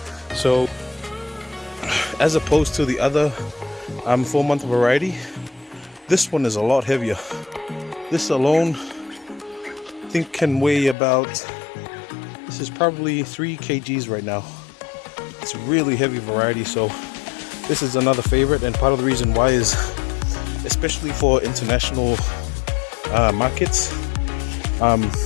So as opposed to the other 4-month variety, this one is a lot heavier. This alone, I think, can weigh about, this is probably 3 kgs right now. It's a really heavy variety, so this is another favorite, and part of the reason why is, especially for international markets,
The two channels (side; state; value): right; drops out; at 11.0 s